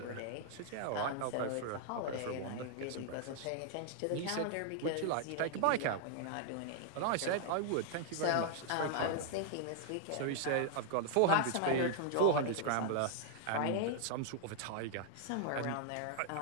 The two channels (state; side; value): different; both; correlation 0.00